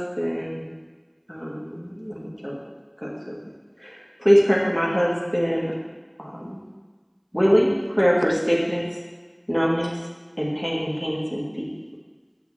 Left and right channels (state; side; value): identical; both; correlation 1.00